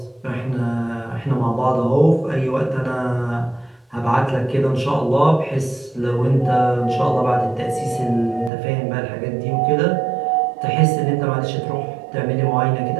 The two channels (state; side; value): drops out; left; at 8.5 s